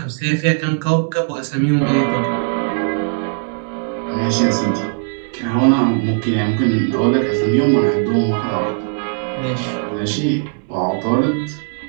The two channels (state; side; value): silent; left; 57 dB below the other